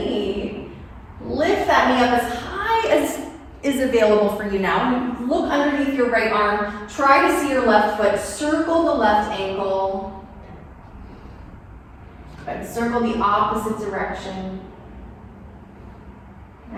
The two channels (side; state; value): both; identical; correlation 1.00